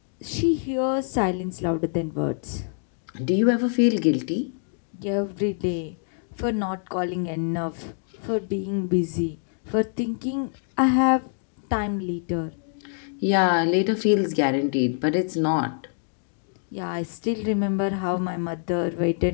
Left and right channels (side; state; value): right; silent; digital silence